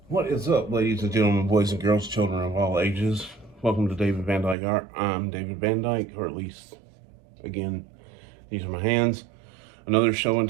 What is up, ladies and gentlemen, boys and girls, children of all ages? Welcome to David Van Dyke Art. I'm David Van Dyke, or at least, again, these are my hands. Another show and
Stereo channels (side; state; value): left; drops out; at 4.5 s